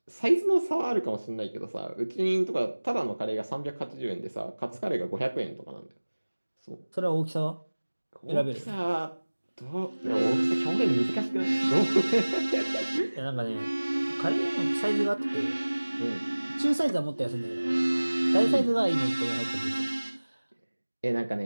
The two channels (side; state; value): both; inverted; correlation -1.00